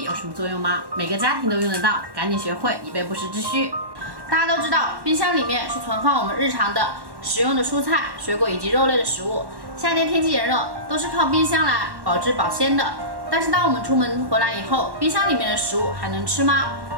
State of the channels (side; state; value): left; late; 1.1 ms